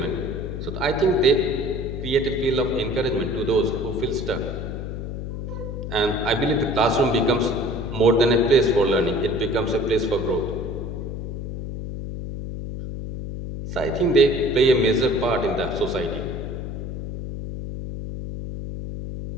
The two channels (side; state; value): left; noise; hum, 6 dB below the sound